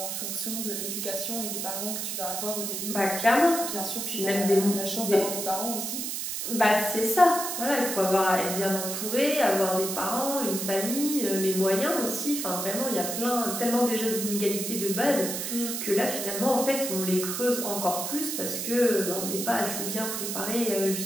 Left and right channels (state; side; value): noise; right; hiss, 3 dB below the sound